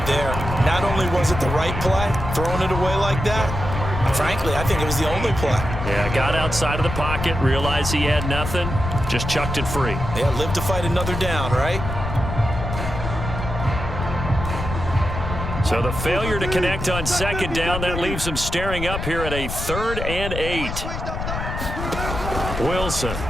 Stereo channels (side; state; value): left; noise; rumble, 5 dB below the sound